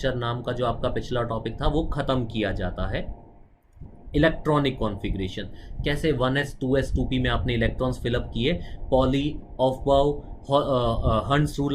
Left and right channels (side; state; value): both; identical; correlation 1.00